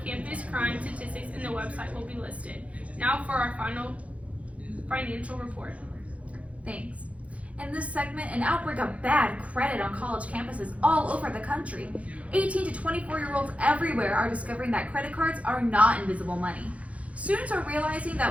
campus crime statistics and the website will be listed. Now for our final financial report. Thanks. In this segment, an outbreak of bad credit on college campuses all over the country. 18 to 24-year-olds everywhere are discovering that credit cards are not invisible money. Students are realizing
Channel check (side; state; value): left; late; 0.065 ms